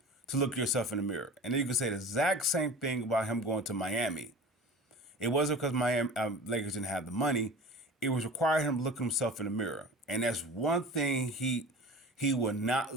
look yourself in the mirror. And then you could say the exact same thing about him going to Miami. It wasn't because Miami Lakers didn't have the money. It was requiring him to look himself in the mirror. And that's one thing he would not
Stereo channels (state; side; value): normal; both; correlation 0.37